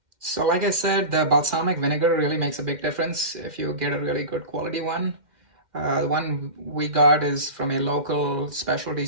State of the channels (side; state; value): left; late; 2.1 ms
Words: So like I said, the balsamic vinegar really makes a big difference if you get a really good quality one. The one we got is from a local specialty